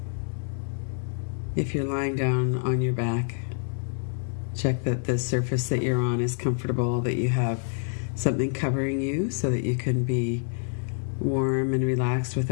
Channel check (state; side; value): silent; right; digital silence